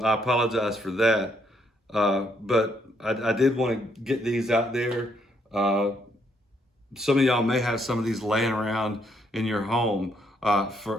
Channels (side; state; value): both; normal; correlation 0.72